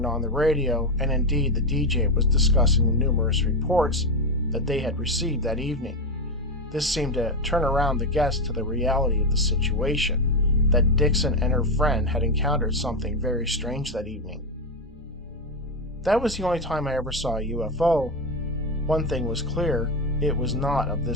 on the radio, and indeed the DJ was discussing the numerous reports that they had received that evening. This seemed to turn around the guests to the reality of the situation, that Dixon and her friend had encountered something very strange that evening. That was the only time I ever saw a UFO. One thing was clear, it was not of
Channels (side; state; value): both; normal; correlation 0.11